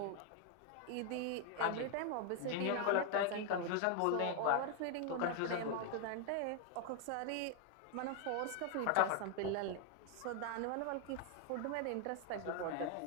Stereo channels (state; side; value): different; both; correlation 0.00